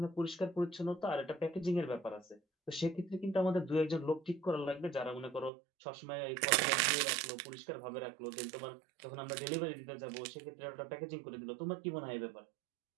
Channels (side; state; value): left; drops out; at 5.5 s